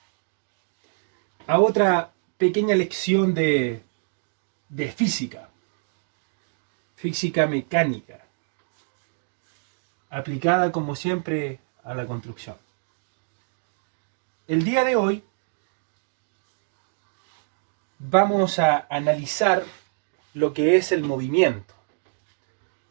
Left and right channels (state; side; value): silent; left; digital silence